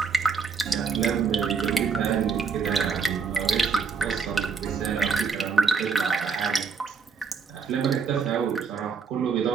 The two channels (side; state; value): left; quieter; 5.4 dB